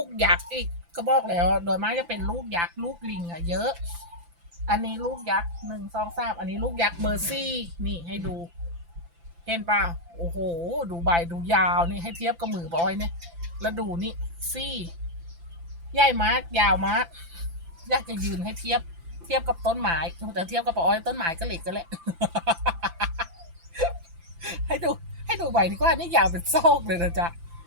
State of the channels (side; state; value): left; late; 5.9 ms